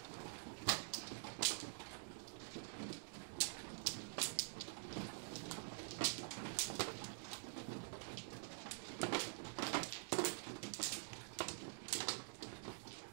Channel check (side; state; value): left; silent; digital silence